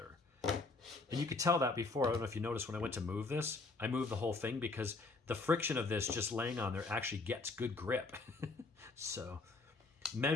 And you could tell that before. I don't know if you noticed when I went to move this, I moved the whole thing because the friction of this just laying on there actually gets good grip. So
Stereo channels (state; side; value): quieter; right; 3.7 dB